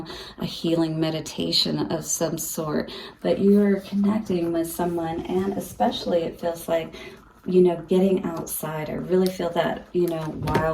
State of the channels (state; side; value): identical; both; correlation 1.00